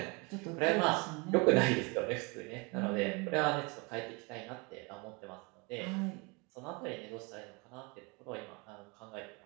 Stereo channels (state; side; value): quieter; left; 29.3 dB